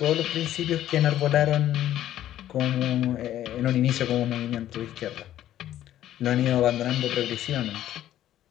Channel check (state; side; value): quieter; right; 12.5 dB